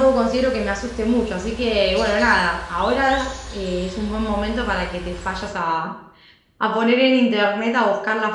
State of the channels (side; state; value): both; identical; correlation 1.00